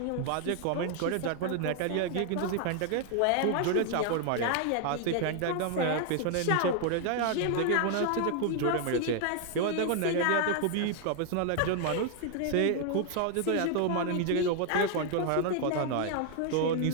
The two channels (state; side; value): different; both; correlation 0.00